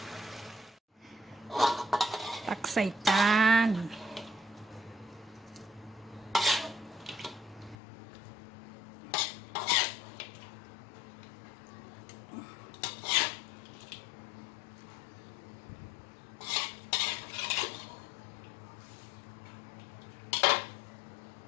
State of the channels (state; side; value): drops out; right; at 7.8 s